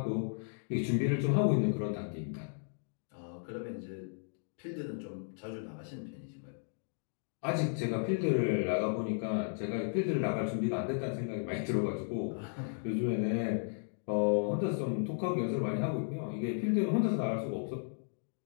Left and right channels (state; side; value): silent; right; digital silence